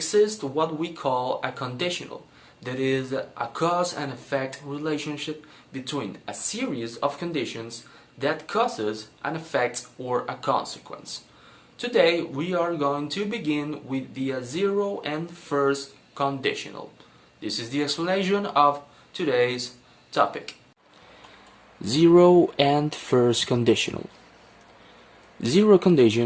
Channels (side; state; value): both; identical; correlation 1.00